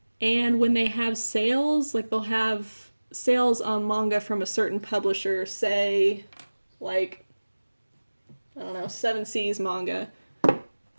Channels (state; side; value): inverted; both; correlation -1.00